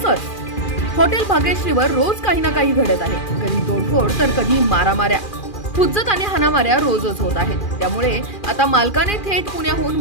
हॉटेल भाग्यश्रीवर रोज काही ना काही घडत आहे, कधी तोडफोड तर कधी मारामाऱ्या, हुज्जत आणि हाणामाऱ्या रोजच होत आहेत। त्यामुळे आता मालकाने थेट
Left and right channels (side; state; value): right; late; 2.4 ms